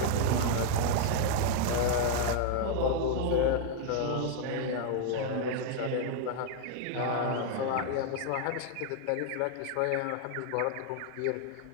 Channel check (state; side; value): different; both; correlation 0.00